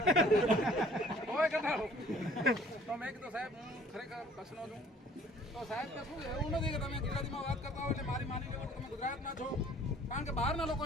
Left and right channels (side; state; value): both; normal; correlation 0.54